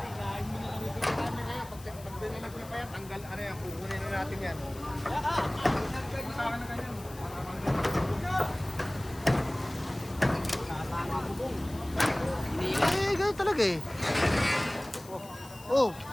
mo na lang yung camera ngayon. Pag dinilag niyo pa yan, Tatanggal, ano yan, kukunin na natin yan. Eh, ganun talaga eh. Oh,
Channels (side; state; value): left; noise; hiss, 19 dB below the sound